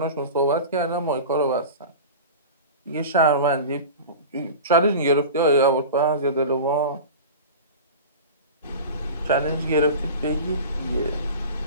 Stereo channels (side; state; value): both; inverted; correlation -0.33